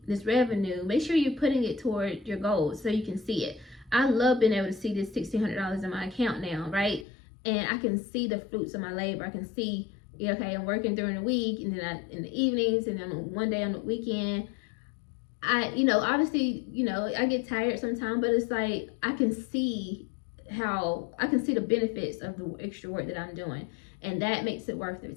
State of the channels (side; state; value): right; drops out; at 7.1 s